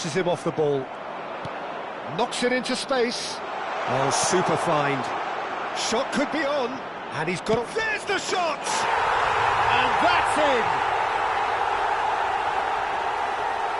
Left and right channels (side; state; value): both; identical; correlation 1.00